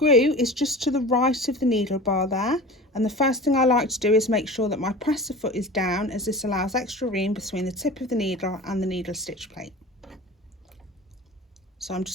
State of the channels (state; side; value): normal; both; correlation 0.36